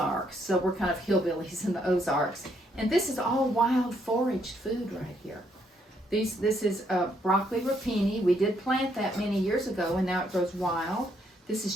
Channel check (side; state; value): both; normal; correlation 0.72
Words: so we're kind of hillbillies in the Ozarks. And this is all wild foraged food right here. This is broccoli rapini. We did plant that many years ago, and now it grows wild. This